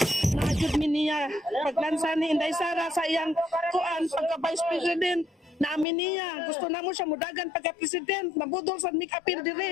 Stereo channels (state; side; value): drops out; right; at 5.9 s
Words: Naajud mi niya paglansa ni Inday Sara sa iyang kuan pagka Vice President. Naamin niya, gusto na mo siya mudagan pagka-president, nabudol sa mikapil